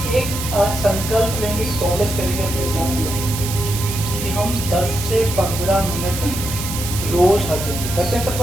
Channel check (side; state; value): right; noise; hiss, 6 dB below the sound